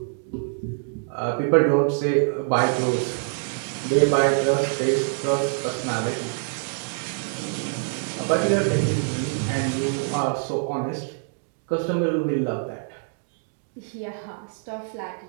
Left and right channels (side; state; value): left; silent; 62 dB below the other